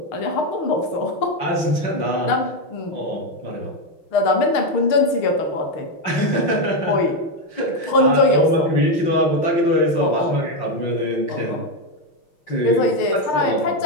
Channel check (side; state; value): right; late; 6.5 ms